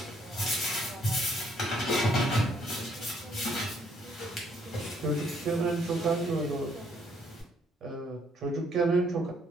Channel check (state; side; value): normal; both; correlation 0.67